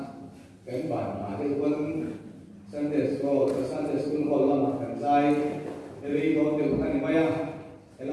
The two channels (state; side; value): identical; both; correlation 1.00